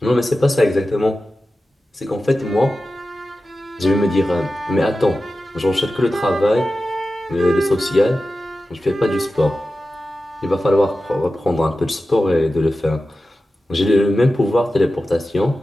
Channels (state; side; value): normal; both; correlation 0.94